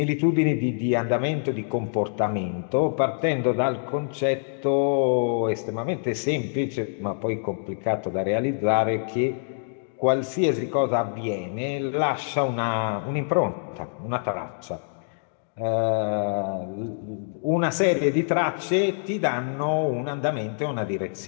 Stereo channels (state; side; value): silent; right; digital silence